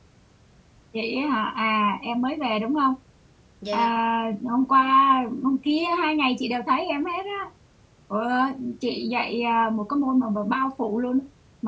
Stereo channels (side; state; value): both; identical; correlation 1.00